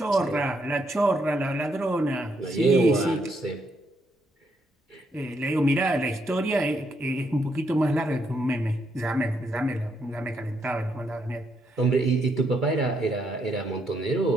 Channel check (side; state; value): both; normal; correlation 0.76